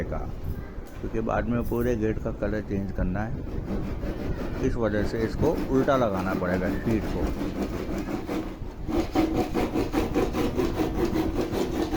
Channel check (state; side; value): identical; both; correlation 1.00